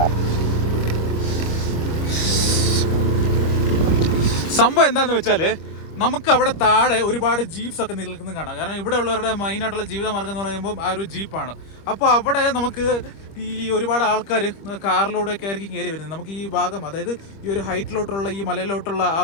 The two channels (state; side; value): late; right; 25 ms